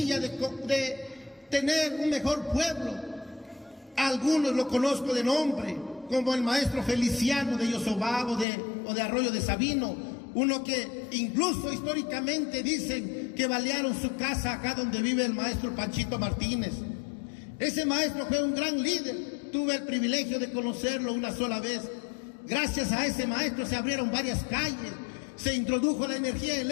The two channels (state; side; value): drops out; right; at 8.5 s